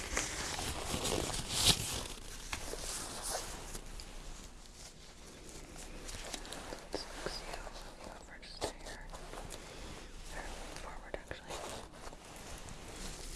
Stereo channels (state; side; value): identical; both; correlation 1.00